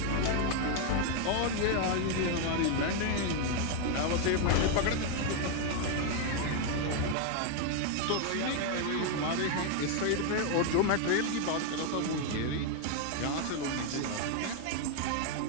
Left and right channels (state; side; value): different; both; correlation 0.01